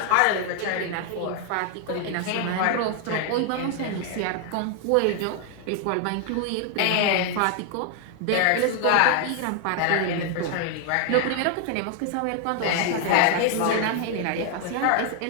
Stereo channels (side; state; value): both; different; correlation 0.00